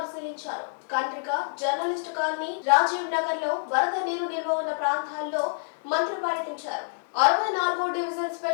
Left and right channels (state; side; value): silent; right; digital silence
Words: కంట్రిక జర్నలిస్టు కాలనీ, రాజీవ్ నగర్ లో వరద నీరు నిల్వ ఉన్న ప్రాంతాల్లో మంత్రి పర్యటించారు. 64వ division